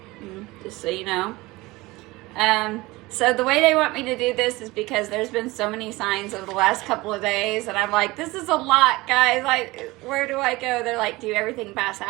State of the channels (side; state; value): left; quieter; 21.0 dB